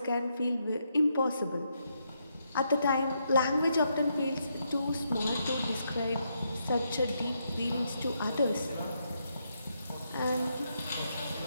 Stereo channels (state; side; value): inverted; both; correlation -0.79